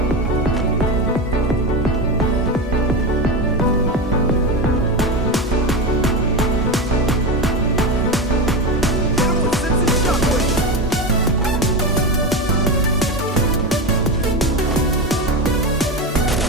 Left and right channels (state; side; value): normal; both; correlation 0.18